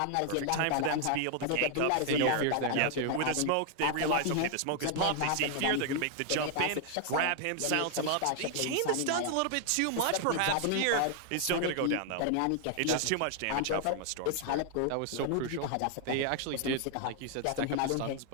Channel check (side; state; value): both; different; correlation 0.00